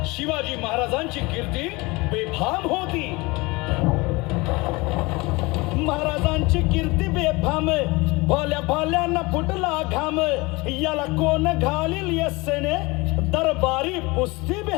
शिवाजी महाराजांची कीर्ती बेफाम होती. महाराजांची कीर्ती बेफाम, भल्या भल्यांना फुटला घाम. याला कोण घालील यस्सेने दरबारी पुस्ती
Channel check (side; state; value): right; quieter; 24.0 dB